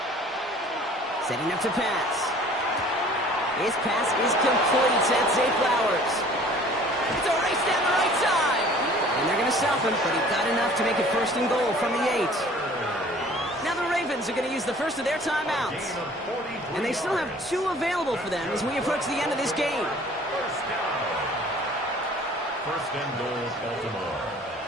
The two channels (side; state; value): both; normal; correlation 0.50